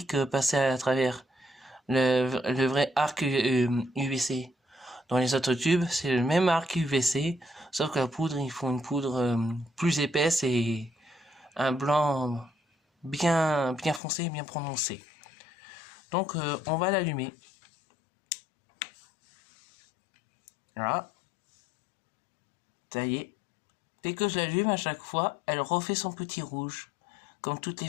passer à travers. Le vrai arc UVC. Dans les autres tubes, c'est le même arc UVC, sauf que la poudre, ils font une poudre plus épaisse et un blanc bien foncé, bien prononcé. Donc on va l'allumer. Là. Ça y est. Dès que je l'allume, à chaque fois, elle refait son petit rouge, comme toutes les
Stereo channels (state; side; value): drops out; right; at 14.0 s